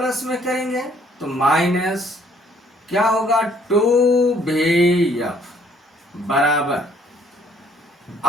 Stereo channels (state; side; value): normal; both; correlation 0.63